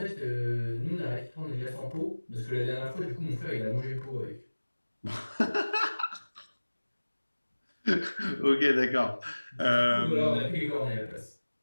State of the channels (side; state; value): both; inverted; correlation -1.00